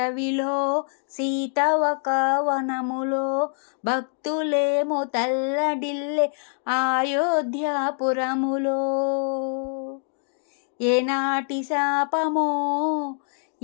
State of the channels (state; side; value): silent; right; 59 dB below the other